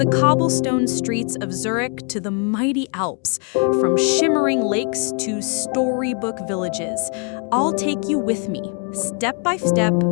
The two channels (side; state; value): right; quieter; 39.3 dB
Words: cobblestone streets of Zurich to the mighty Alps, from shimmering lakes to storybook villages, I'll take you with me, step by step,